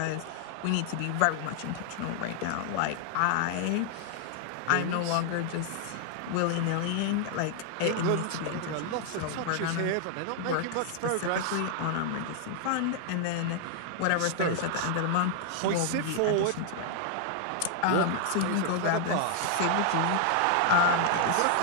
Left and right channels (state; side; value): different; both; correlation 0.00